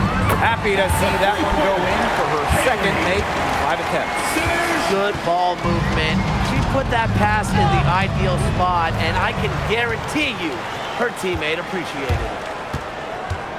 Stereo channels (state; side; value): identical; both; correlation 1.00